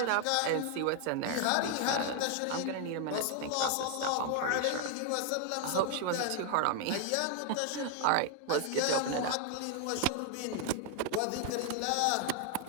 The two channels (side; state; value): both; different; correlation 0.00